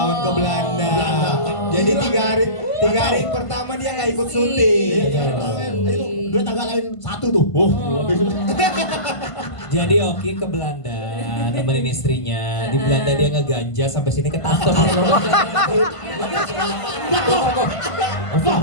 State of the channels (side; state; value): right; late; 1.5 ms